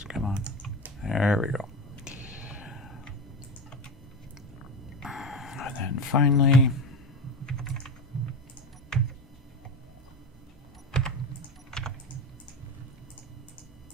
come on. There we go. And then finally,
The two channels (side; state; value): both; normal; correlation 0.22